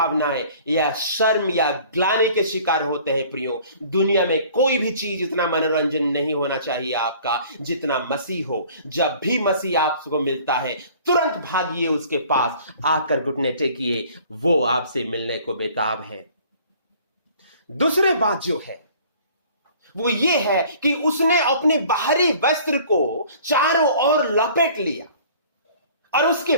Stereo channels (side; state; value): both; inverted; correlation -0.51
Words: या शर्म या ग्लानि के शिकार होते हैं प्रियो, दुनिया में कोई भी चीज इतना मनोरंजन नहीं होना चाहिए आपका जितना मसीह हो। जब भी मसीह आपको मिलता है, तुरंत भागिए उसके पास, आकर घुटने टेकिए, वो आपसे मिलने को बेताब है। दूसरी बात जो है वो ये है कि उसने अपने बाहरी वस्त्र को चारों ओर लपेट लिया और उसके